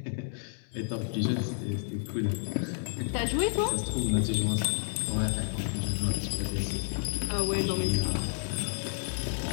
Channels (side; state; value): right; silent; 58 dB below the other